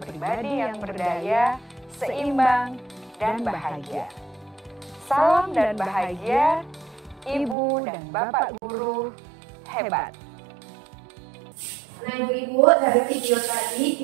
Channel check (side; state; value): left; drops out; at 7.6 s